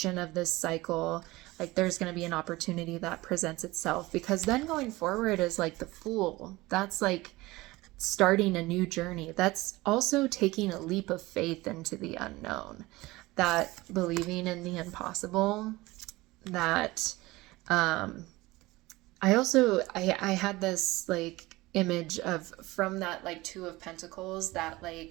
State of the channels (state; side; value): quieter; left; 20.2 dB